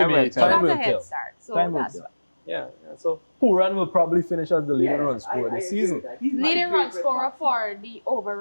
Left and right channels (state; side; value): inverted; both; correlation -1.00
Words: be. will He tell. got will a head tell. start, so Time will that's tell. why. Yeah. So Puran will probably finish as the leading run scorer I this agree season. with that. He's my Leading run favorite scorer batsman. for the